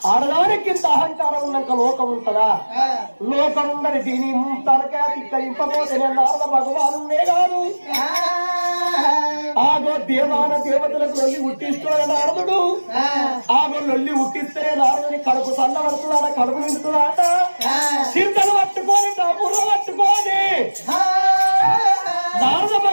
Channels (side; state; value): both; inverted; correlation -1.00